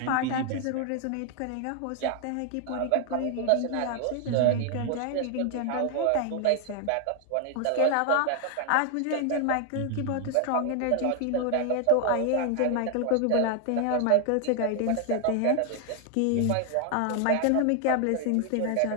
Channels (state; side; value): different; both; correlation 0.00